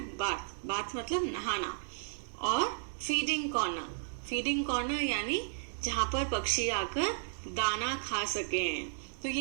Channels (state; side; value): silent; left; digital silence